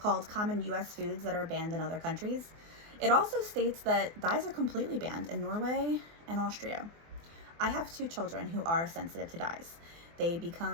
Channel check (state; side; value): late; left; 24 ms